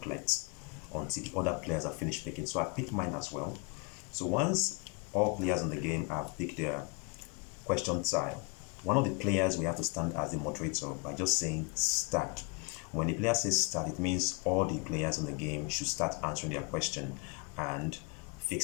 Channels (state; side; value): quieter; right; 31.0 dB